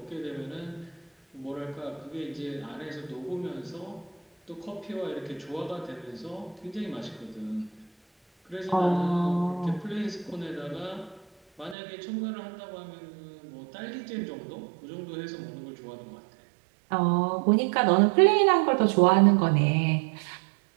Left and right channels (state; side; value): drops out; left; at 11.8 s